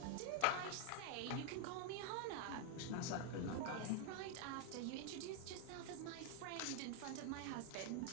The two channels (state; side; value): different; both; correlation 0.00